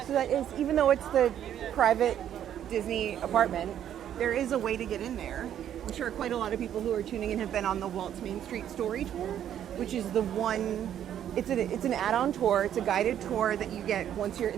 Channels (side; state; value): left; quieter; 10.3 dB